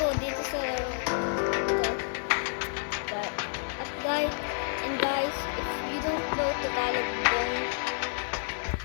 dito sa laro ito. At guys, if you don't know Tagalog,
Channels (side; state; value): right; silent; digital silence